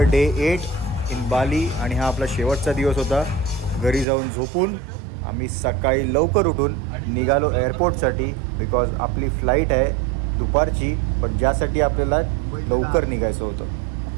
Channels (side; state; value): left; drops out; at 4.0 s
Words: day 8 in Bali. आणि हा आपला शेवटचा दिवस होता. घरी जाऊन झोपून आम्ही सकाळी लवकर उठून निघालो एअरपोर्टसाठी, बिकॉज आपली फ्लाईट आहे दुपारची, पण ज्यासाठी आपल्याला लवकर निघायचं होतं.